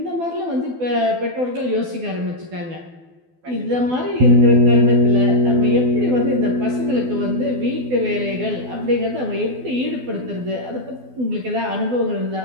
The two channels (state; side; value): late; left; 12 ms